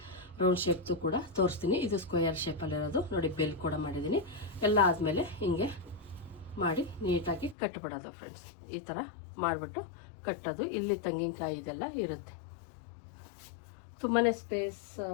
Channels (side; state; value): right; drops out; at 7.6 s